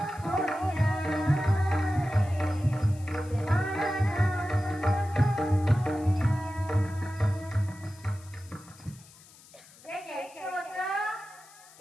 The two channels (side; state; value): left; noise; hiss, 23 dB below the sound